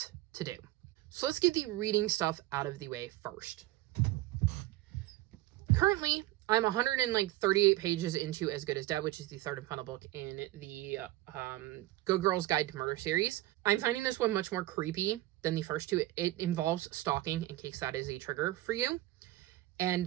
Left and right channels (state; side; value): quieter; left; 16.9 dB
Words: to do. So let's get the reading stuff out of the way first. Currently, I'm 138 pages into As Good as Dead, which is the third and final book in the Good Girl's Guide to Murder series. I'm finding this one much more creepy than the first two. It involves stalking, in case that is a trigger for you.